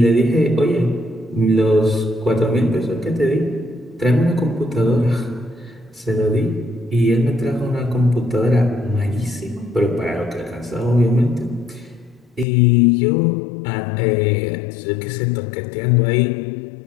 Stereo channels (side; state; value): right; drops out; at 12.5 s